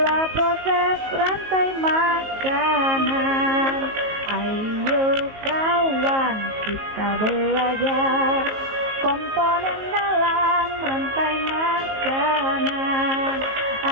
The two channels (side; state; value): left; late; 19 ms